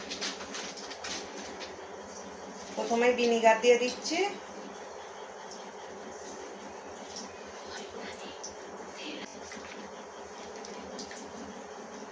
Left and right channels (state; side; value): identical; both; correlation 1.00